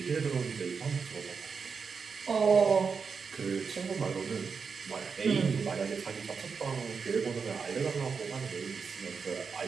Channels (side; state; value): left; quieter; 5.5 dB